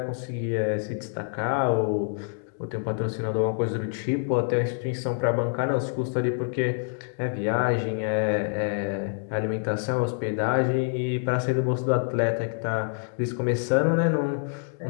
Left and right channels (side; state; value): right; silent; digital silence